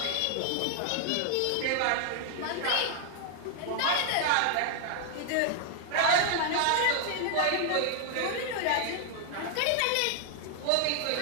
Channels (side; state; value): both; different; correlation 0.00